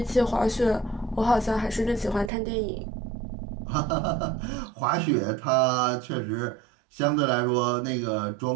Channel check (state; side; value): drops out; left; at 2.3 s